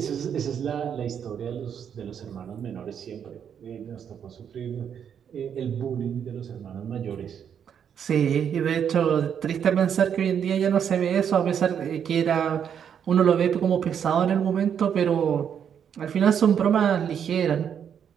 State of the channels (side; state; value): left; quieter; 8.2 dB